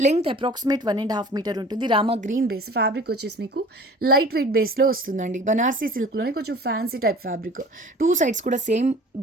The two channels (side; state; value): both; normal; correlation 0.45